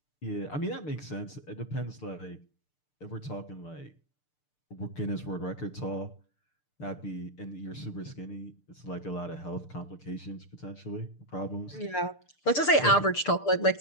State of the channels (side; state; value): right; late; 6.7 ms